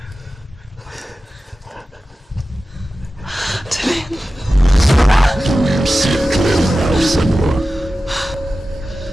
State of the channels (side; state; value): both; normal; correlation 0.94